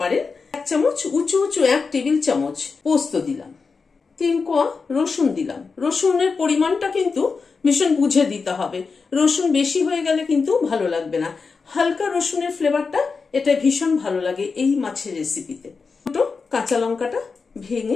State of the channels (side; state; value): right; quieter; 4.8 dB